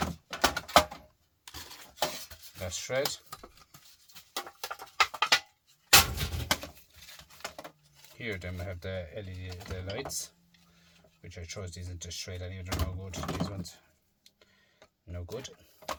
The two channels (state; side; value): identical; both; correlation 1.00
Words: That's shred. Here then we have the LED, the lights. which I chose these into shred anyway. They're no good. These ones, no good.